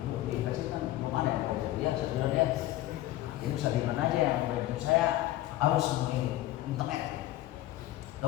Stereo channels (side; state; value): right; quieter; 15.4 dB